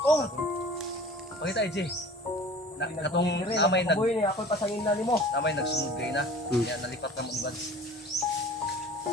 Pakita EJ. Katong namay nag Boy ni ako pasangin na nimo. namay nagsunod kay na. Kaya nalipat ka mo advance.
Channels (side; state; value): both; normal; correlation 0.43